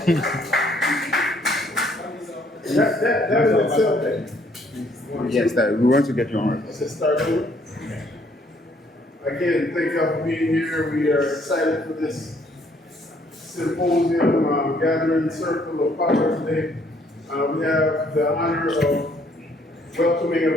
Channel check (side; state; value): both; normal; correlation 0.65